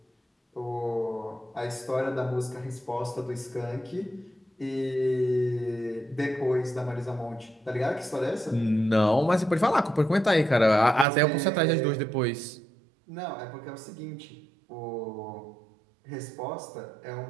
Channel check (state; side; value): drops out; left; at 11.1 s